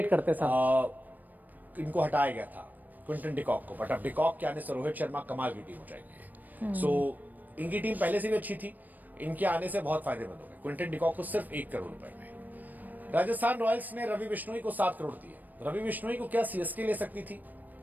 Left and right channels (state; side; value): late; left; 0.085 ms